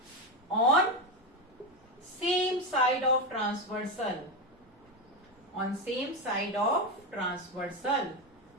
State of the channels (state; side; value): normal; both; correlation 0.13